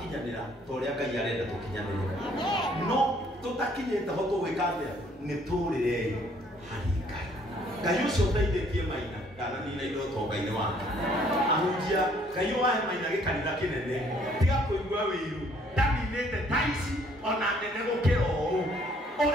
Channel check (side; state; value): both; normal; correlation 0.62